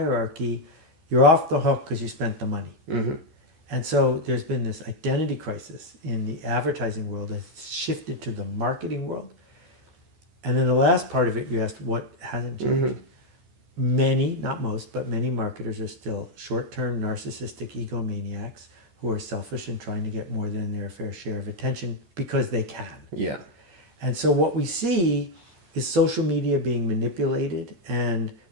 you're off the hook because you spent the money. Mm-hmm. And so there's been this identity crisis in the advertising world that's shifted to the marketing world. And then the last part of it, you asked what hasn't changed. Mm-hmm. Many, not most, but many marketers are still short-term narcissistic egomaniacs who are selfish and trying to get more than their fair share of attention because they can. Yeah. And so what we see is social media being manipulated and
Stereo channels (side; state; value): left; late; 14 ms